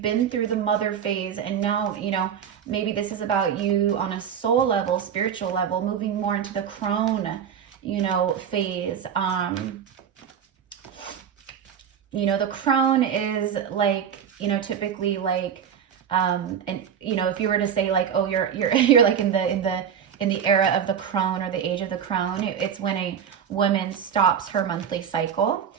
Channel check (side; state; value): left; quieter; 8.2 dB